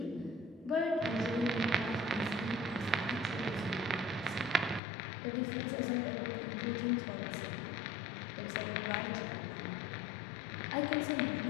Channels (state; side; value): drops out; right; at 4.8 s